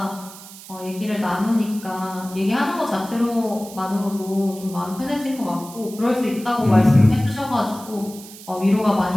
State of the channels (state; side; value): noise; right; hiss, 17 dB below the sound